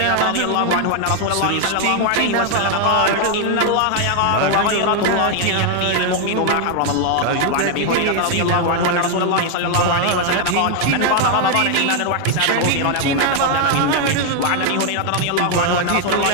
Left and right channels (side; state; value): both; different; correlation 0.01